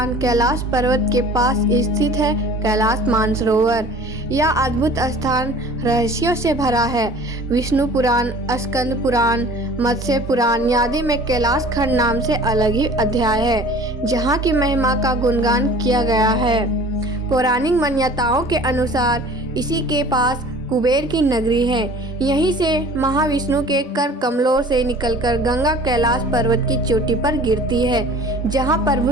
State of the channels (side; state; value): both; normal; correlation 0.45